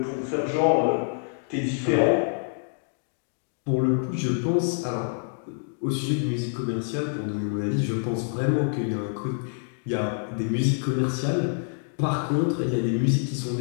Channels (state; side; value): silent; right; digital silence